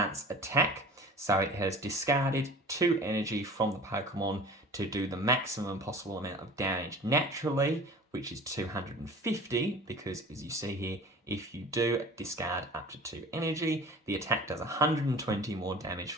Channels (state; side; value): normal; both; correlation 0.41